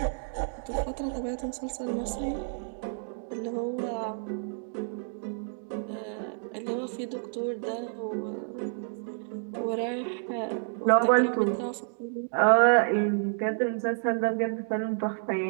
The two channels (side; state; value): left; silent; digital silence